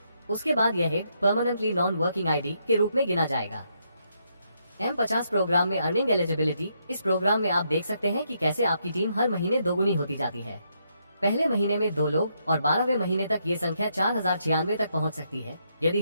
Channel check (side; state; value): both; inverted; correlation -0.77